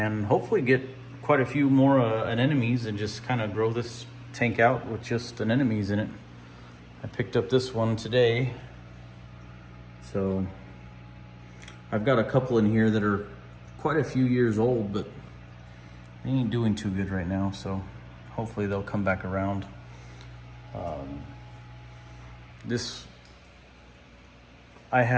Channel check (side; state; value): both; identical; correlation 1.00